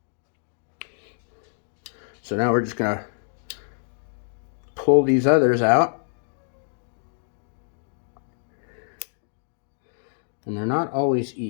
now we're just gonna pull these others out, and they're not always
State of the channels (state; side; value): silent; right; digital silence